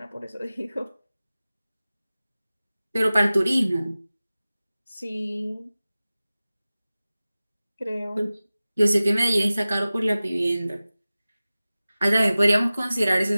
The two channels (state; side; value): inverted; both; correlation -0.97